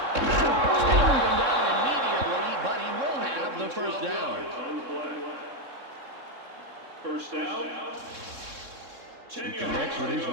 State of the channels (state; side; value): late; left; 3.6 ms